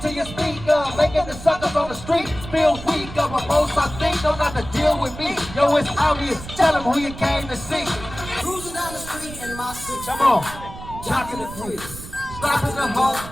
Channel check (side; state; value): right; noise; rumble, 13 dB below the sound